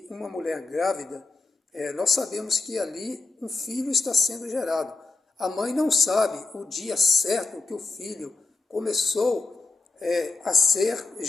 uma mulher grávida, nós sabemos que ali um filho está sendo gerado. A mãe não sabe o dia certo que o filho começou a ser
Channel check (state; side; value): quieter; right; 3.6 dB